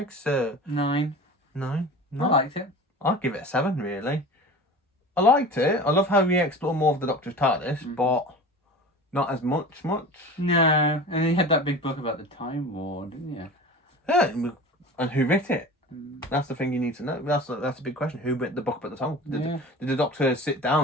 9. 9? I liked it. I'd give it a 7, really. I liked it. I love how we explore more of the Doctor's TARDIS, but not as much. No, and he had that big book about the Time War, didn't you? Yeah, and who writ it? That's the thing you need to know. That's a big question. Who wrote the book about the Time? Did the Doctor sit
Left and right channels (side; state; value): both; normal; correlation 0.36